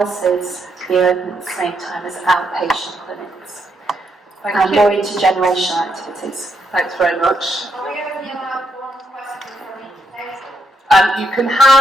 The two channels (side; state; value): both; normal; correlation 0.77